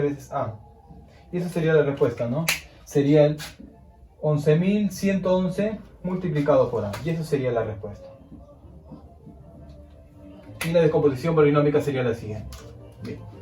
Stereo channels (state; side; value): identical; both; correlation 1.00